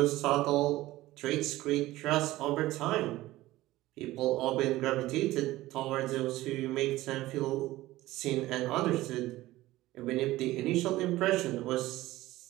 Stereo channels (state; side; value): quieter; left; 17.1 dB